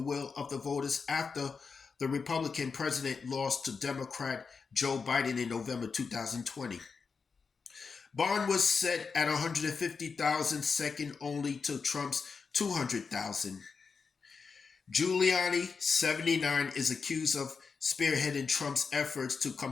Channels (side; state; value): right; quieter; 5.2 dB